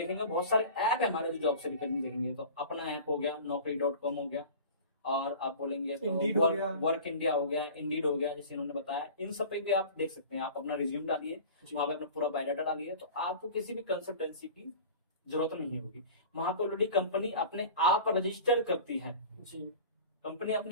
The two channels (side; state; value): both; inverted; correlation -0.39